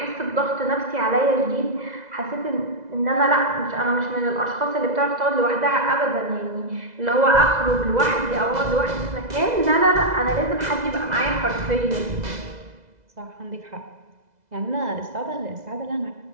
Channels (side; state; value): left; late; 2.0 ms